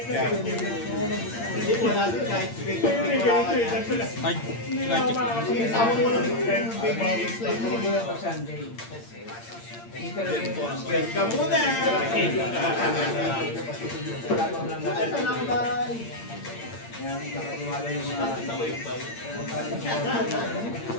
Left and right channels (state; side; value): late; right; 8.7 ms